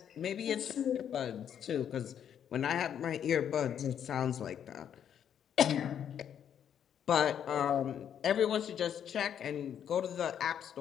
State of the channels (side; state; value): right; quieter; 9.0 dB